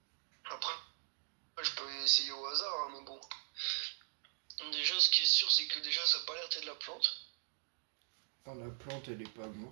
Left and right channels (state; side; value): silent; left; digital silence